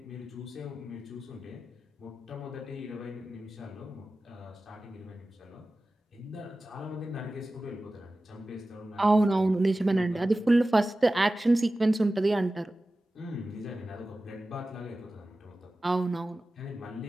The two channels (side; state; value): both; normal; correlation 0.95